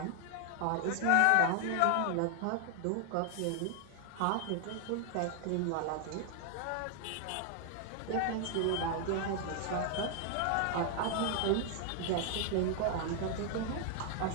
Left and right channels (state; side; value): different; both; correlation 0.00